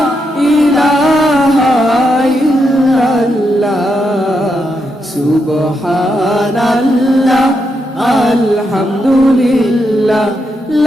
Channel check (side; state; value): both; normal; correlation 0.82